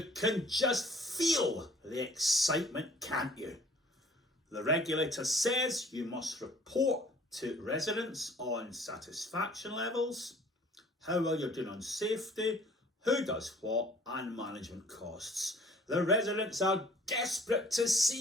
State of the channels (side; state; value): both; normal; correlation 0.54